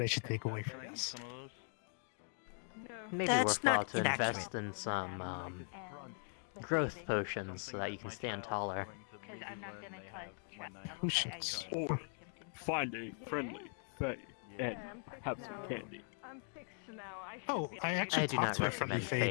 I should take away from this. Maybe That's worthwhile not to invest in some growth potions so that you can stand taller. Potions. Or find a friendly Fae and have some candy. Oh, I actually I do talked not to a friendly recommend Fae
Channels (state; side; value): silent; right; 51 dB below the other